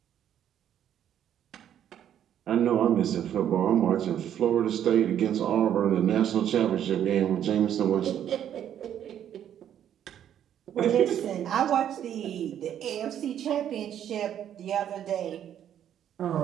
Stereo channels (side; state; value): left; quieter; 10.1 dB